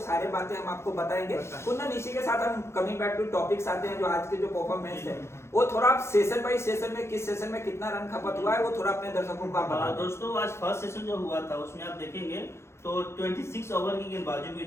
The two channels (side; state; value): right; late; 0.13 ms